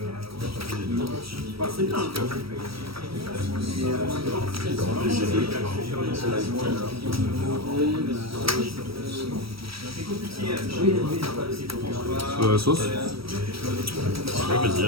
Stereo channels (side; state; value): left; late; 0.75 ms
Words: Sauce. Ouais, vas-y,